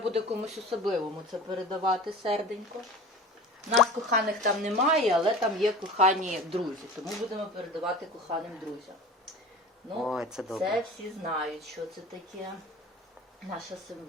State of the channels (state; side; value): normal; both; correlation 0.38